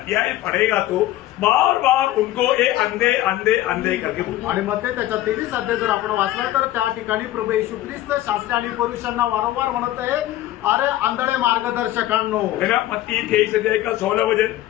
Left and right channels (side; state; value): right; quieter; 14.7 dB